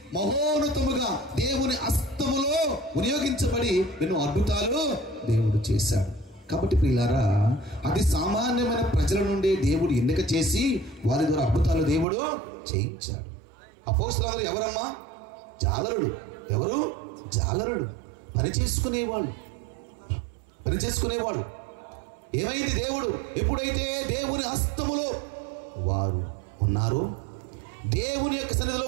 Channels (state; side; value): drops out; left; at 12.1 s